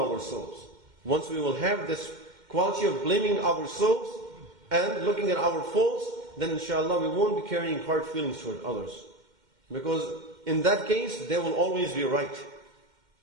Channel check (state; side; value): late; left; 2.1 ms